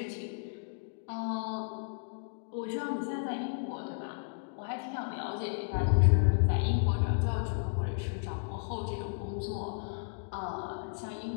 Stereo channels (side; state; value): right; silent; digital silence